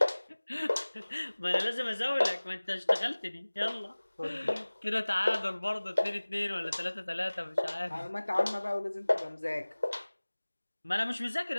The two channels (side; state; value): both; inverted; correlation -1.00